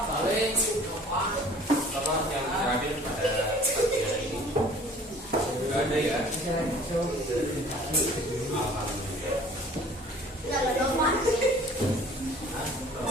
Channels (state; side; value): normal; both; correlation 0.50